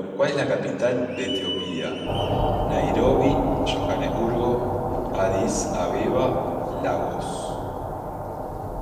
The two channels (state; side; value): identical; both; correlation 1.00